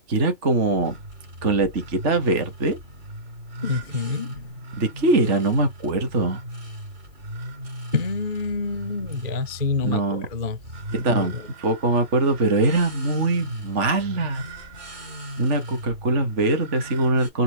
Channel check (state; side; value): late; left; 3.4 ms